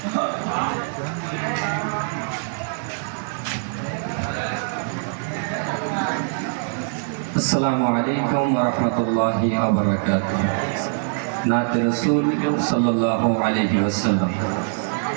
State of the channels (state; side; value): silent; left; digital silence